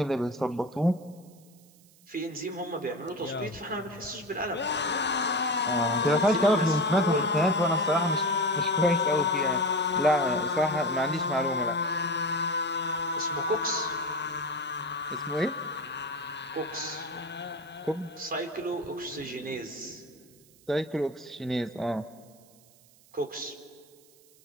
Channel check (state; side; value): noise; right; hiss, 28 dB below the sound